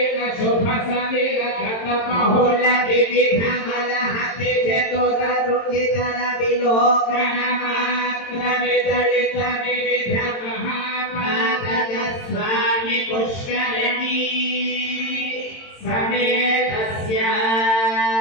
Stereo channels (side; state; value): right; late; 22 ms